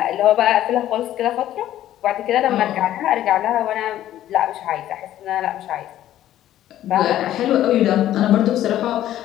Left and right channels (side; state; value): right; quieter; 12.7 dB